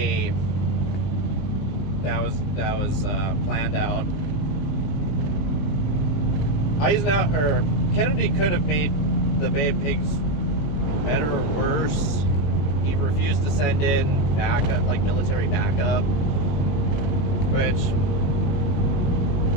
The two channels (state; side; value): late; right; 21 ms